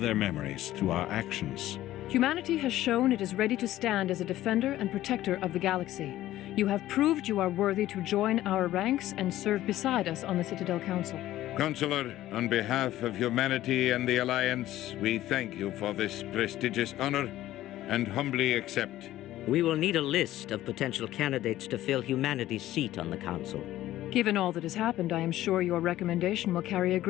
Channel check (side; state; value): right; quieter; 14.5 dB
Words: memories through our actions. Humanity has shown it is ready to stand as a defender and protector of the galaxy. You have proved you are worthy to join our ranks and serve beside us on the Citadel Council. Counselor, on behalf of humanity and the Alliance, we thank you for this prestigious honor and humbly accept. We will need a list of potential candidates to fill humanity's seat on the Council. Given all that has happened, I am sure your recommendation will carry a